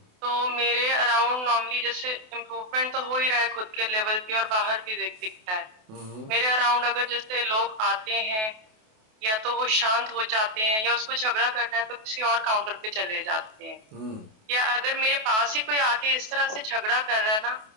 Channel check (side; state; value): left; late; 28 ms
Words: तो मेरे अराउंड नॉर्मली जैसे इम्प्रूवमेंट तो हो ही रहा है खुद के लेवल पे और बाहर भी दिखता है। मेरे अराउंड अगर जैसे लोग आते हैं या तो वो शांत हो जाते हैं या उसको झगड़ा करना है तो किसी और काउंटर पे चले जाते हैं, या अगर मेरे पास ही कोई आके इस तरह से झगड़ा कर रहा है ना